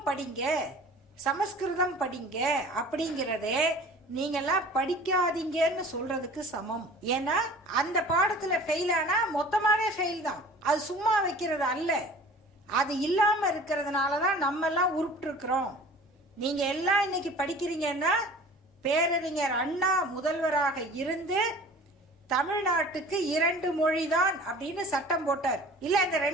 படிங்க, சமஸ்கிருதம் படிங்க அப்படிங்கிறதே நீங்கெல்லாம் படிக்காதீங்கன்னு சொல்றதுக்கு சமம். ஏன்னா அந்த பாடத்துல ஃபெயில் ஆனா மொத்தமாவே ஃபெயில் தான். அது சும்மா வைக்கிறது அல்ல. அது இல்லாம இருக்கிறதுனாலதான் நம்ம எல்லாம் உருப்பிட்டு இருக்கிறோம். நீங்க எல்லாம் இன்னைக்கு படிக்கிறீங்கன்னா பேரறிஞர் அண்ணா முதல்வராக இருந்து தமிழ்நாட்டுக்கு 2 மொழி தான் அப்படின்னு சட்டம் போட்டார். இல்ல இந்த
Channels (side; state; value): both; normal; correlation 0.44